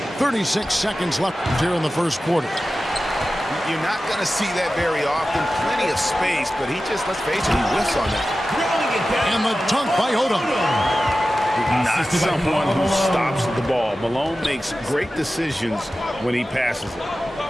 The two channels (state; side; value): normal; both; correlation 0.94